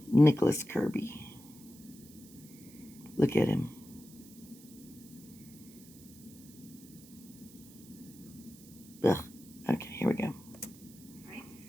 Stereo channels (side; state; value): right; noise; hiss, 21 dB below the sound